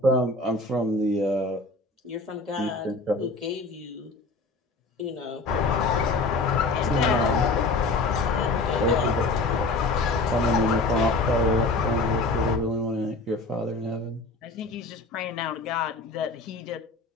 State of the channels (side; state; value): right; quieter; 3.2 dB